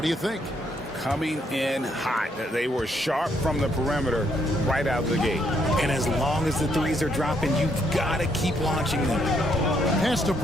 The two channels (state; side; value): normal; both; correlation 0.72